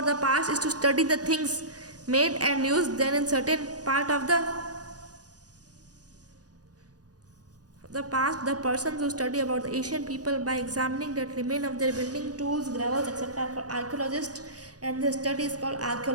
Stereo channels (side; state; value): left; late; 0.68 ms